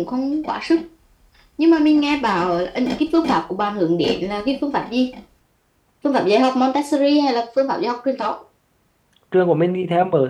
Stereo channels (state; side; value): identical; both; correlation 1.00